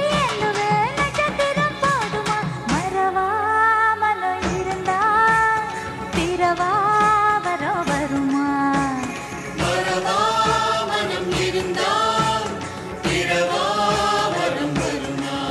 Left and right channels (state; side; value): identical; both; correlation 1.00